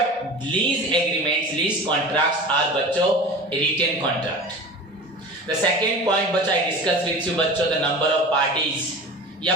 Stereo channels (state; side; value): normal; both; correlation 0.35